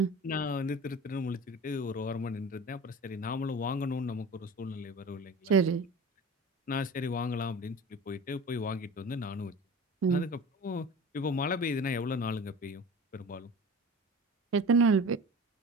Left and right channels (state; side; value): normal; both; correlation 0.36